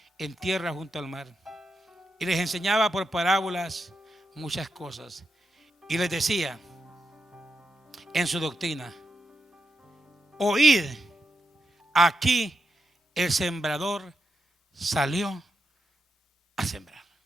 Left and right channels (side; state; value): both; normal; correlation 0.85